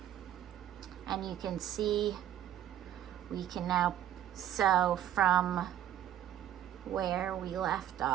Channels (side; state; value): left; quieter; 11.4 dB